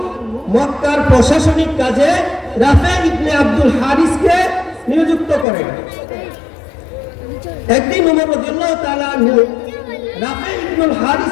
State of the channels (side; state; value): right; drops out; at 5.5 s